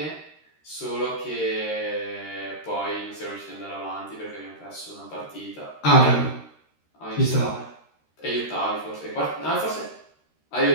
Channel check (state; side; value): late; right; 13 ms